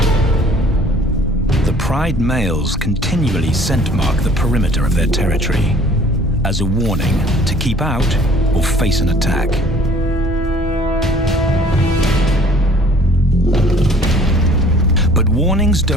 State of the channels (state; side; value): normal; both; correlation 0.53